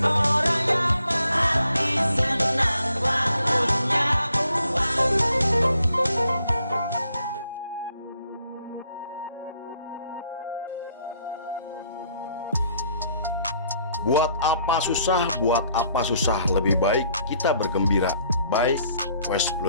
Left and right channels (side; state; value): both; inverted; correlation -0.67